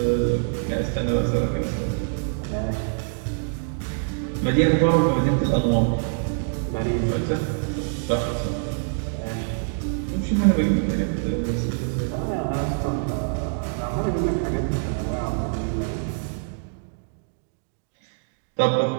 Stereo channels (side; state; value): left; silent; digital silence